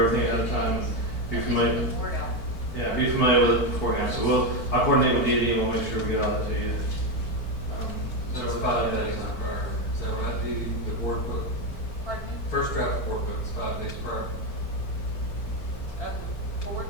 everything ahead of time, be familiar. Yeah, be familiar with it beforehand. So I'll coordinate with Dee and we'll make sure we get all that to you. So it's 5 days prior. Is that right, Dee? The board book? Pardon me? First draft board book is 5 days prior. Board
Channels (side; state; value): right; late; 4.4 ms